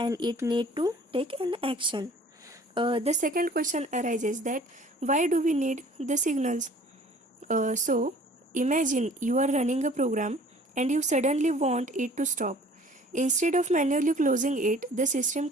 it need to take an action. The second question arises that why do we need the signals? Imagine you are running a program and you suddenly want it to stop. Instead of manually closing it, the system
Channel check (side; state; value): both; normal; correlation 0.50